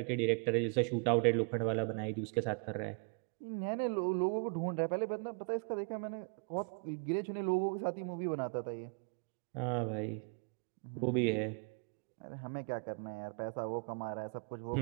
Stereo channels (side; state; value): left; quieter; 35.9 dB